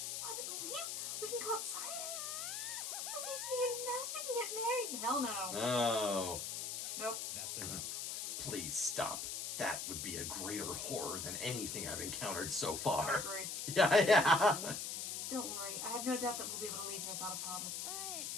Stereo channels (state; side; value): noise; left; hiss, 3 dB below the sound